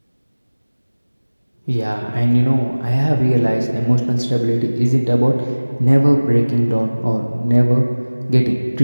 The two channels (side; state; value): both; inverted; correlation -1.00